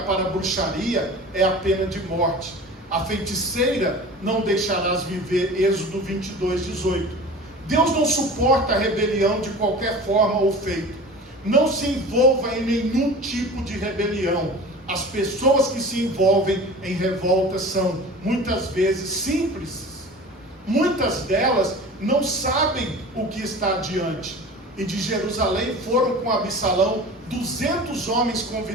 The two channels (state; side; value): normal; both; correlation 0.38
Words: a bruxaria é a pena de morte. A feiticeira não deixarás viver, Êxodo 22:18. Deus não suporta a rebelião de qualquer forma ou feito. Não se envolva em nenhum tipo de rebelião. As pessoas que se envolvem em revolta são muitas vezes simples. Muitas delas não sabem o que está adiante. E de Jerusalém foram com Absalão 200 homens